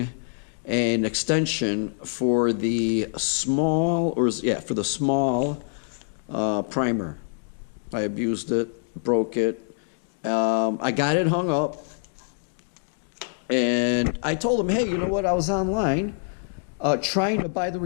and extension for the small, for the small primer. I abused it, broke it. I got it hung up, and I told him, hey, you know what? I was online. trying to buy the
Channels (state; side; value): silent; right; digital silence